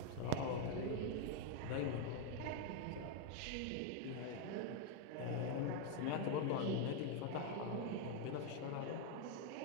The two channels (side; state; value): both; different; correlation 0.01